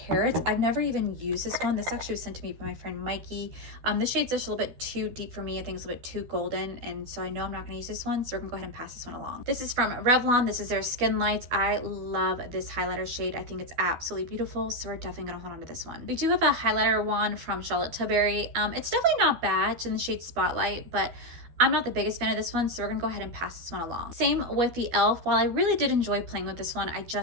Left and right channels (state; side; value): late; left; 12 ms